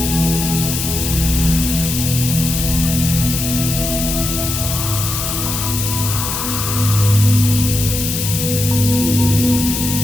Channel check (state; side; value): noise; left; hiss, 3 dB below the sound